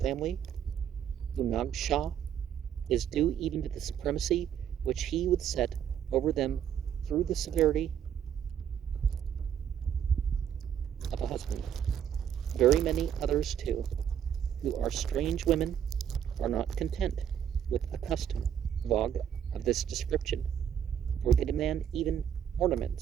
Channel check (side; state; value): left; quieter; 9.0 dB